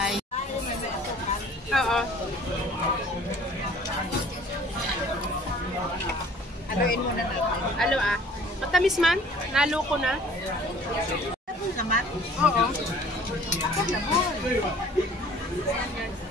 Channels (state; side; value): normal; both; correlation 0.51